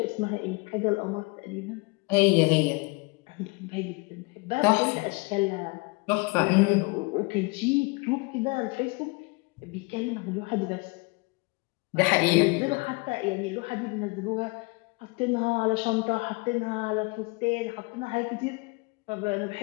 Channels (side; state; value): right; quieter; 28.0 dB